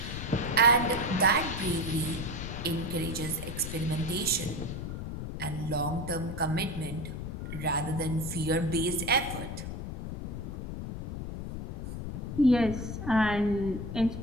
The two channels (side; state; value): left; noise; rumble, 6 dB below the sound